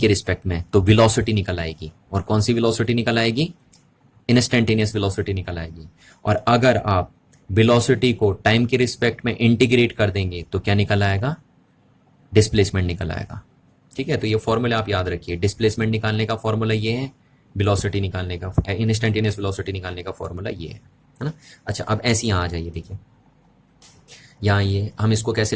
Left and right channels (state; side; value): identical; both; correlation 1.00